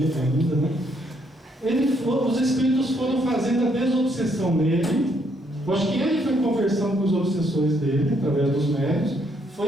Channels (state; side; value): normal; both; correlation 0.72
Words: ainda, né? Os espíritos foram fazendo a desobsessão nele. Eu acho que ele foi conversando com os obsessores dele, através dos médios,